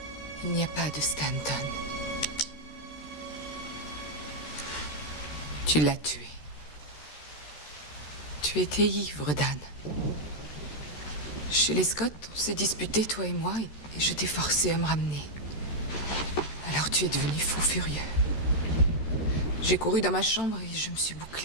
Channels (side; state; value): right; late; 13 ms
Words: Il n'y a pas de Stanton. Tu l'as tué. Tu étais ivre, Dan. Chez les Scott, on s'est disputé, toi et moi, et je t'ai forcé à me ramener. Alors tu es devenu fou furieux. J'ai couru dans ma chambre et je me suis